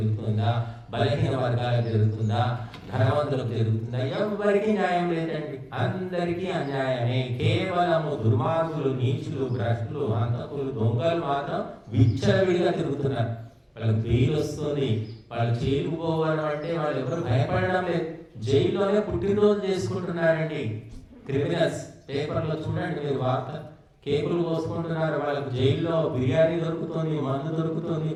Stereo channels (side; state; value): both; identical; correlation 1.00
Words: బలహీన వర్గాలకు జరుగుతుందా? ధనవంతులకు జరుగుతుందా? ఎవరికి న్యాయం లేదండి. అందరికీ అన్యాయమే. కేవలము దుర్మార్గులు, నీచులు, భ్రష్టులు, హంతకులు, దొంగలు మాత్రం విచ్చలవిడిగా తిరుగుతున్నారు. వాళ్ళకి బెయిల్ వస్తుంది, వాళ్ళు జైలుకు పోవడం అంటే వాళ్ళు ఎవరు భయపడడం లేదు. జైల్లోనే పుట్టినరోజు చేసుకుంటున్నారండి క్రిమినల్స్. పేపర్లో చూడండి మీరు వార్త, కేకులు కోసుకుంటున్నారు. వాళ్ళకు జైల్లో బిర్యానీ దొరుకుతుంది, మందు దొరుకుతుంది,